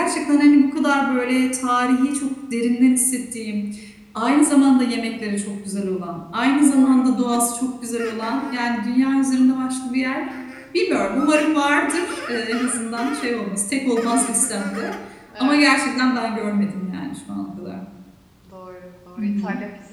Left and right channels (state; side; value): identical; both; correlation 1.00